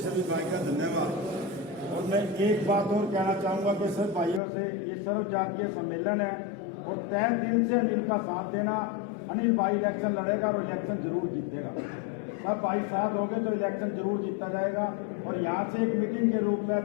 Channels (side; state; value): right; drops out; at 4.4 s